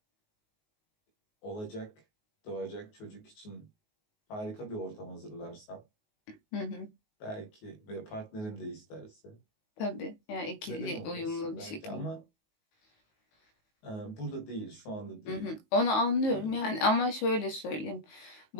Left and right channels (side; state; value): right; late; 19 ms